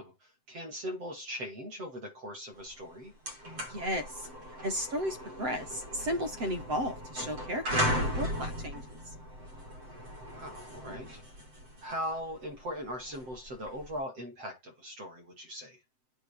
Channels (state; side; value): late; left; 7.8 ms